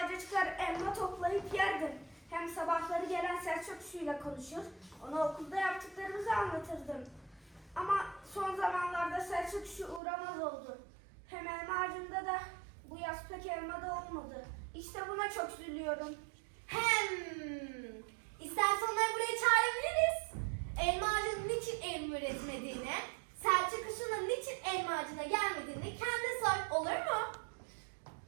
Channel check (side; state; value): left; drops out; at 10.0 s